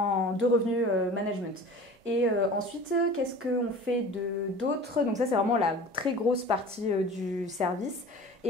revenus management. Et ensuite, qu'est-ce qu'on fait d'autre? Donc ça, c'est vraiment la très grosse partie du service.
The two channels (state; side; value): normal; both; correlation 0.40